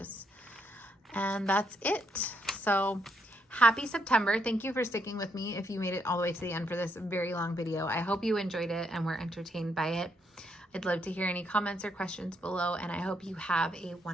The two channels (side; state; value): both; normal; correlation 0.76